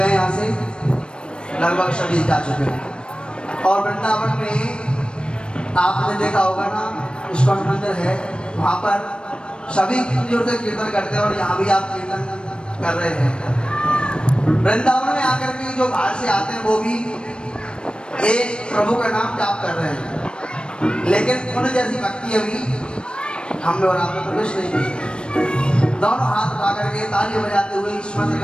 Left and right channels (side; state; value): right; late; 0.054 ms